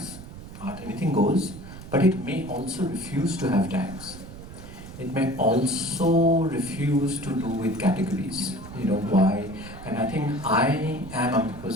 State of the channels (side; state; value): right; noise; rumble, 14 dB below the sound